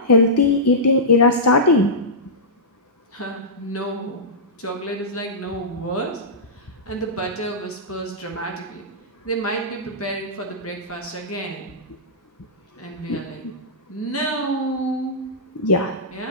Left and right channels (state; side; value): normal; both; correlation -0.15